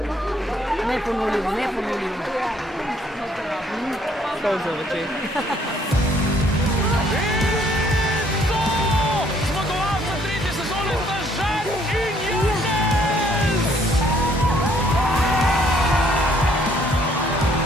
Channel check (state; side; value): normal; both; correlation 0.64